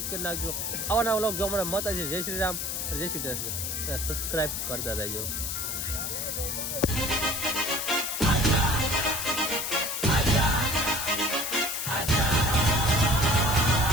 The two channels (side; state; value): left; noise; hiss, 3 dB below the sound